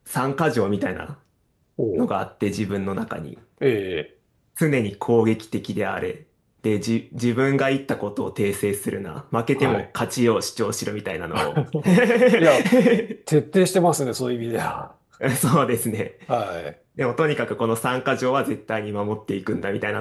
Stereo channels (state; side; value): identical; both; correlation 1.00